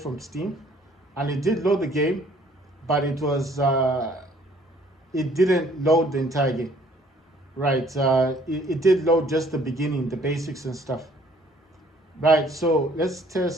Steam, and it did load the game, but it didn't load the entire game. Right? It did load just the beginning, the basics and stuff. Right. So let's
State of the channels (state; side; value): normal; both; correlation 0.59